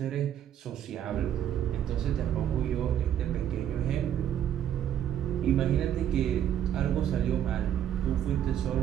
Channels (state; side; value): quieter; left; 10.3 dB